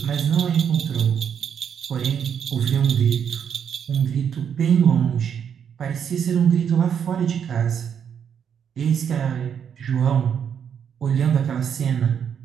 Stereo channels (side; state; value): left; quieter; 8.0 dB